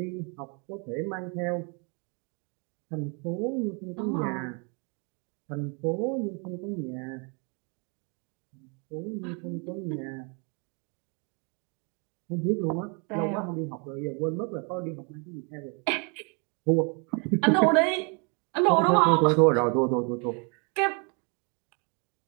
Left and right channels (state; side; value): quieter; left; 35.3 dB